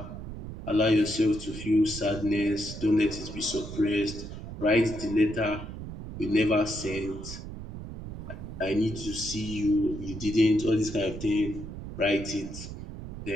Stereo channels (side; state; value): right; noise; rumble, 10 dB below the sound